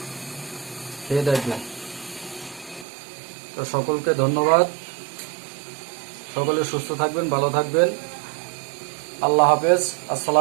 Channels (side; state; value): left; drops out; at 2.9 s